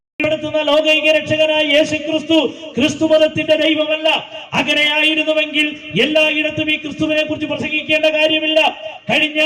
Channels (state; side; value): identical; both; correlation 1.00